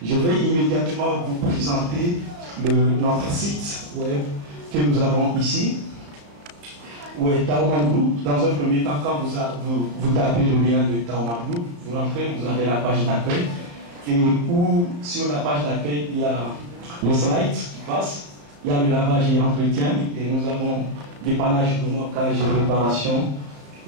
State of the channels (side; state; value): left; late; 34 ms